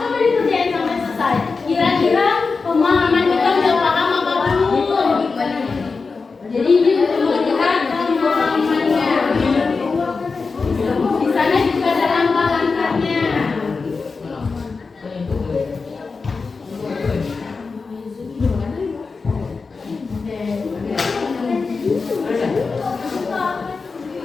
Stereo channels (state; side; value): quieter; right; 4.5 dB